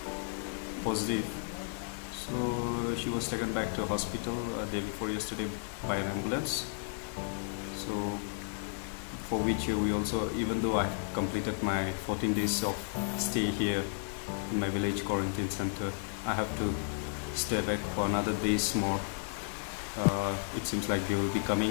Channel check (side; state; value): right; silent; 56 dB below the other